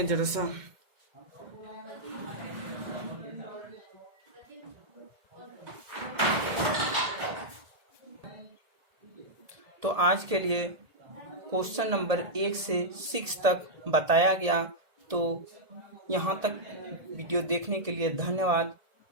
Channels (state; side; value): late; left; 1.8 ms